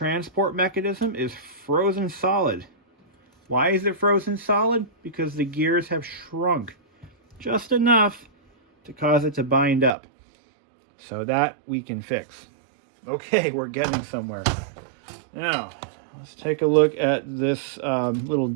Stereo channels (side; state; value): left; drops out; at 9.9 s